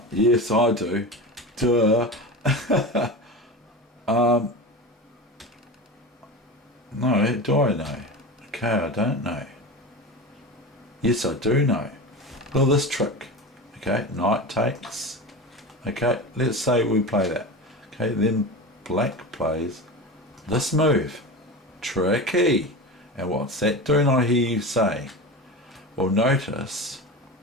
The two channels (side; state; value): both; normal; correlation 0.27